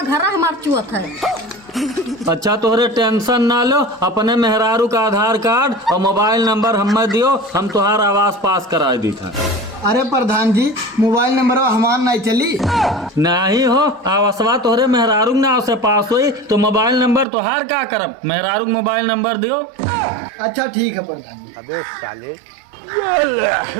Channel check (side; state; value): left; drops out; at 17.2 s